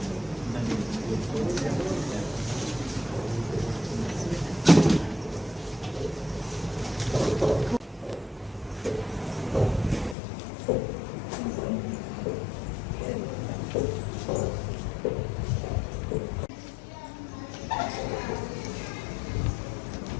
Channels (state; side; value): drops out; right; at 10.2 s